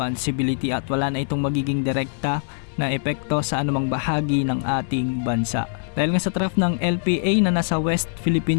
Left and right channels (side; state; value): right; silent; digital silence